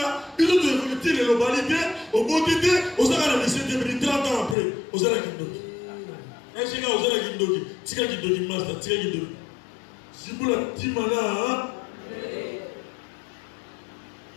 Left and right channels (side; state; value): right; drops out; at 4.5 s